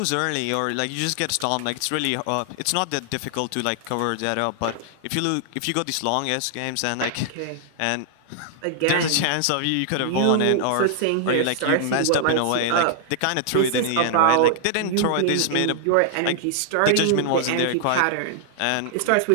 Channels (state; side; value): different; both; correlation -0.01